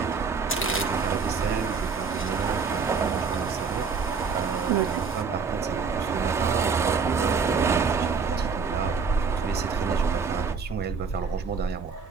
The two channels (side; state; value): left; quieter; 5.3 dB